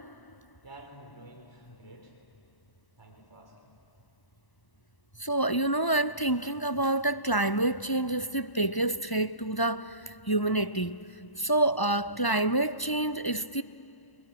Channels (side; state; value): right; late; 1.0 ms